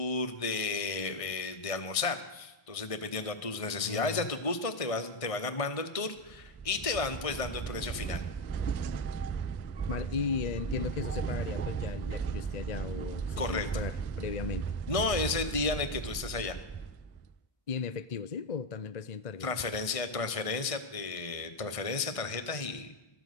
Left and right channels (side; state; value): right; late; 1.6 ms